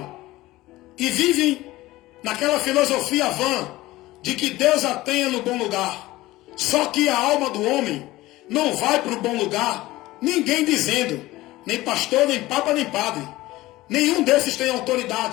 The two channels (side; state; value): right; quieter; 18.0 dB